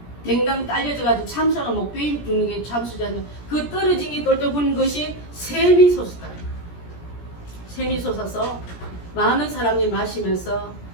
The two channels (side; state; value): right; late; 17 ms